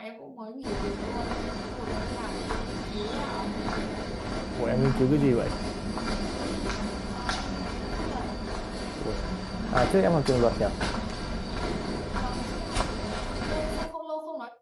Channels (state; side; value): identical; both; correlation 1.00